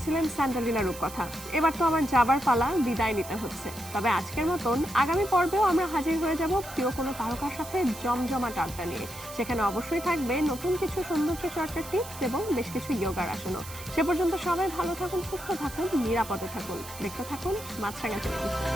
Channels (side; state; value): right; noise; hiss, 14 dB below the sound